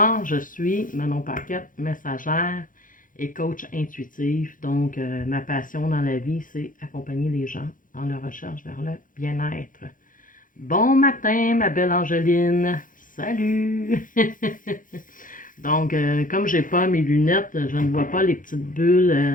Je suis Manon Paquette, messagère et coach intuitif. Donc, ma passion dans la vie, c'est accompagner les gens dans leur recherche vers le bien-être. Bon matin, ma belle Angeline. Salut! Donc, comme j'ai pas mes lunettes, je ne vois pas les petites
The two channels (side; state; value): right; late; 0.39 ms